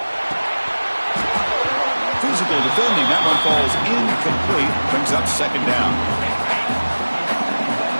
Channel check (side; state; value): both; inverted; correlation -1.00